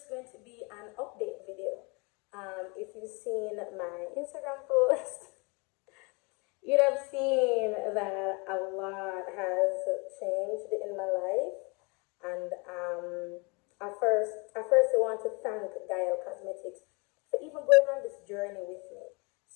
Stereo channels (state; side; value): quieter; right; 30.1 dB